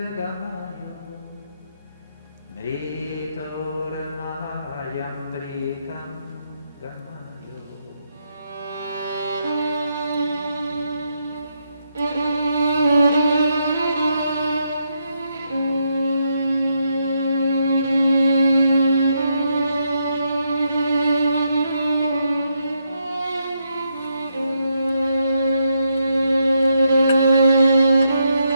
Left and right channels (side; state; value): both; inverted; correlation -0.79